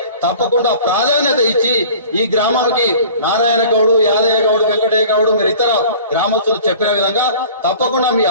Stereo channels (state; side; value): inverted; both; correlation -0.45